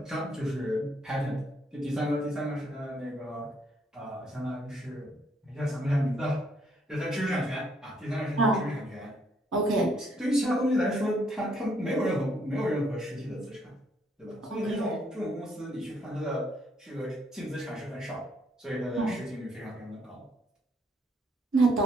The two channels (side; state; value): both; normal; correlation 0.70